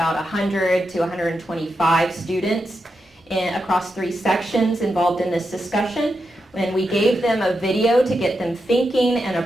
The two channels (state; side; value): normal; both; correlation 0.87